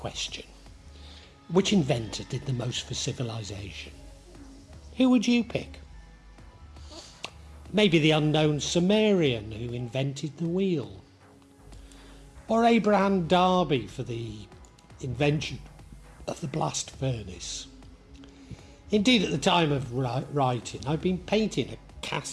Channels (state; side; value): identical; both; correlation 1.00